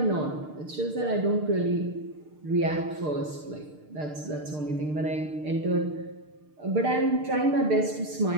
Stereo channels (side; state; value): left; late; 6.6 ms